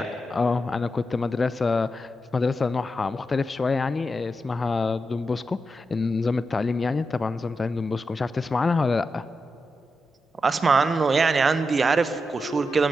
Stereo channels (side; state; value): both; normal; correlation 0.87